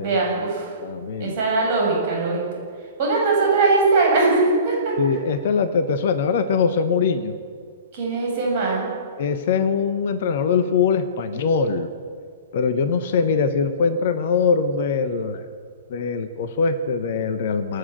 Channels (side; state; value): both; inverted; correlation -0.42